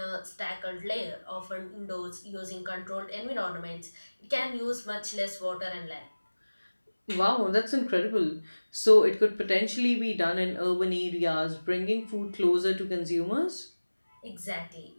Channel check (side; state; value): both; inverted; correlation -1.00